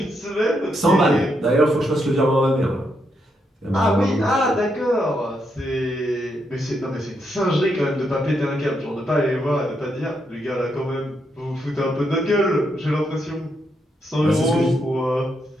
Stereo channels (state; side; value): normal; both; correlation 0.79